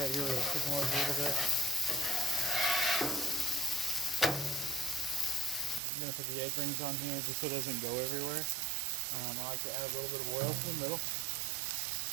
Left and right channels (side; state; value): left; drops out; at 5.8 s